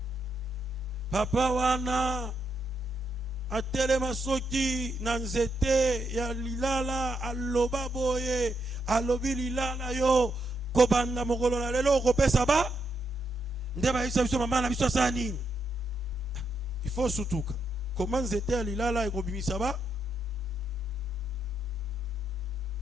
papa wana atelema soki na nzete ya lilala aloba boye alobi lilala yo kobanda mokolo na lelo okopesa ba nde bayebisa biso mama na biso asala nini. Il faut sutuka koma nzete ya lilala ekobimisa ba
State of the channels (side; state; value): both; normal; correlation 0.80